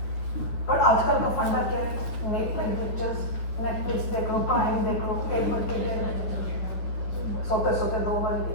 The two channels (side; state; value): right; late; 9.8 ms